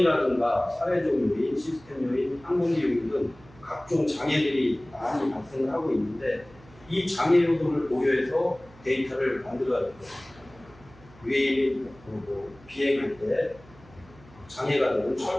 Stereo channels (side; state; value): right; noise; hum, 24 dB below the sound